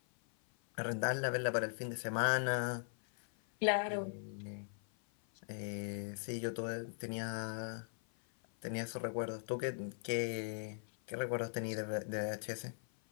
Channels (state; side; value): silent; right; 51 dB below the other